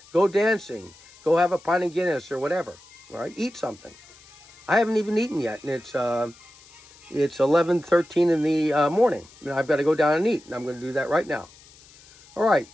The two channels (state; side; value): noise; left; hiss, 24 dB below the sound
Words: go dancing, go have a pint of Guinness or whatever. All right? Eat something. I haven't even eaten yet, and it's 11:13 in the morning. And I've got to go down and eat, and I'm going to do that right now. All right.